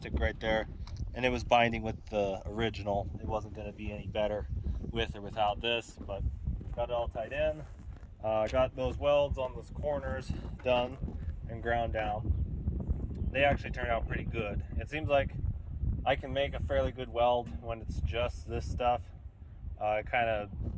right there. And it was binding with the original. It wasn't going to be any better with or without this, but got it all tied in. Got those welds on those corners done and ground down. They actually turned out pretty good. It seems like I can make a fairly good weld when it's just this stuff. It kind of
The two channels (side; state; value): both; identical; correlation 1.00